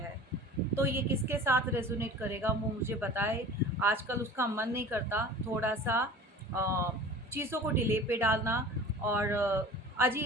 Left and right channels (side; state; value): both; normal; correlation 0.40